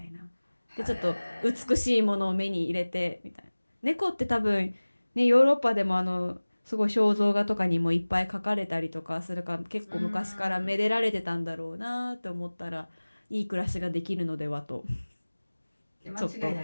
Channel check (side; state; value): both; inverted; correlation -1.00